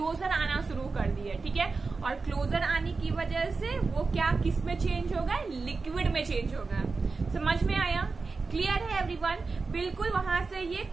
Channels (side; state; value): left; quieter; 4.2 dB